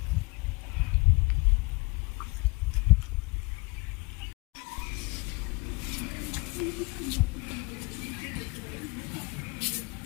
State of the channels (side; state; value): right; quieter; 26.7 dB